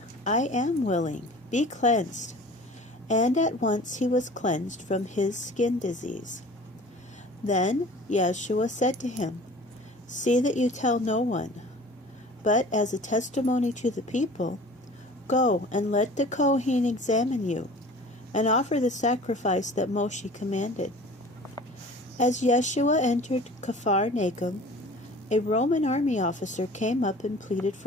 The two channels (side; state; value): both; normal; correlation 0.44